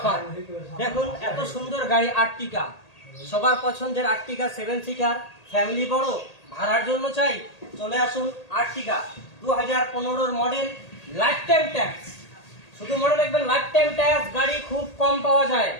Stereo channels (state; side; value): late; right; 1.8 ms